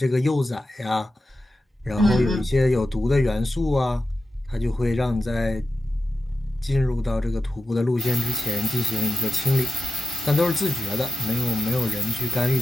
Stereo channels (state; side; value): normal; both; correlation 0.92